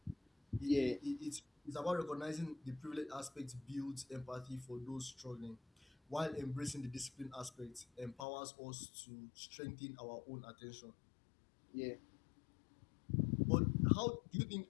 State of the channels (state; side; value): drops out; right; at 8.2 s